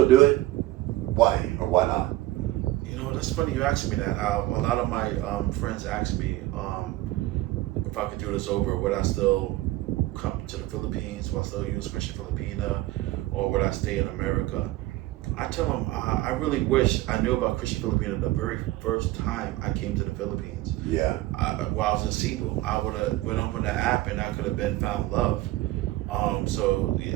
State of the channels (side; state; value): left; quieter; 17.2 dB